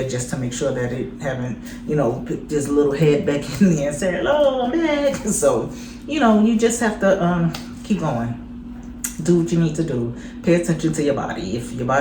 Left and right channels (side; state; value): both; identical; correlation 1.00